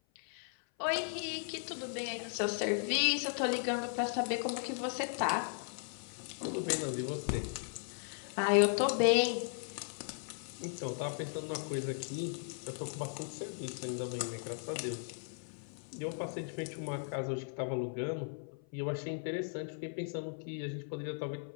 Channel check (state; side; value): silent; right; 53 dB below the other